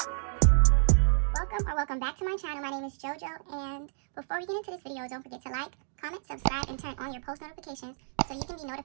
Welcome back to my channel. My name is JoJo, and before we get into this video, don't forget to like, comment, subscribe, and turn on your post notifications so you can be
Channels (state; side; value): silent; left; digital silence